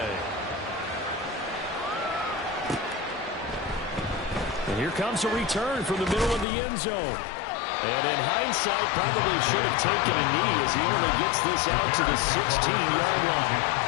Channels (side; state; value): right; drops out; at 6.5 s